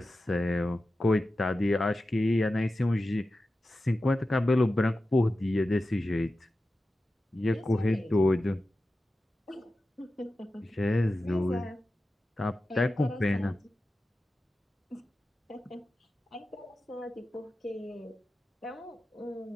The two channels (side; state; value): both; normal; correlation 0.93